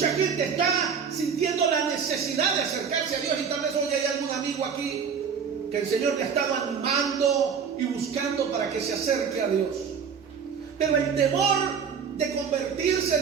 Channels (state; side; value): quieter; left; 6.6 dB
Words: gente está sintiendo la necesidad de acercarse a Dios, y tal vez hoy hay algún amigo aquí que el Señor le ha estado animando y buscando para que se acerque a Dios. Pero el temor de convertirse,